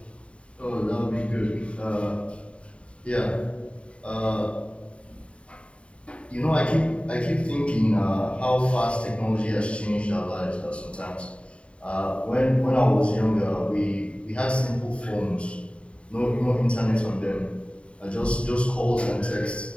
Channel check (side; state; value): right; late; 0.061 ms